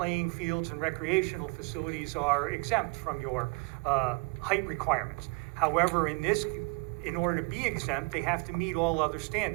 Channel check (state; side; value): quieter; left; 30.4 dB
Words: fields and recreational facilities are exempt from your height requirements. However, in order to be exempt, they have to meet all other